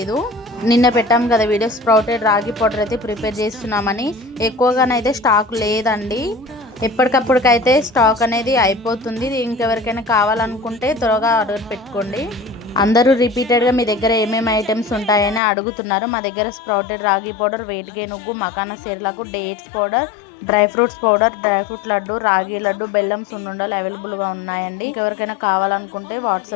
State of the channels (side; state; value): right; drops out; at 15.4 s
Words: నిన్న పెట్టాం కదా వీడియో, స్ప్రౌటెడ్ రాగి పౌడర్ అయితే ప్రిపేర్ చేస్తున్నామని. ఎక్కువగానైతే స్టాక్ లేదండి, ఎప్పటికప్పటికైతే స్టాక్ అనేది అయిపోతుంది. ఇంకెవరికైనా కావాలనుకుంటే త్వరగా ఆర్డర్ పెట్టుకోండి. అందరూ రిపీటెడ్గా మీ దగ్గర ఏమేమి ఐటమ్స్ ఉంటాయని అడుగుతున్నారు. మా దగ్గర స్ప్రౌటెడ్ రాగి పౌడర్, వెయిట్ గెయిన్ ఉగ్గు, makhana సేర్లకు, dates powder, dry fruits powder, dry fruit laddu, రాగి లడ్డు, బెల్లం సున్నుండలు అవైలబుల్గా ఉన్నాయండి. ఎవరికైనా కావాలనుకుంటే